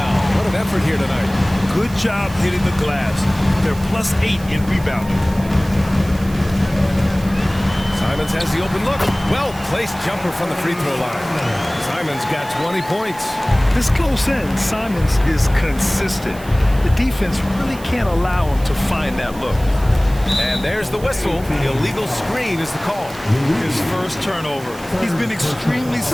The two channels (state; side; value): noise; right; hiss, 19 dB below the sound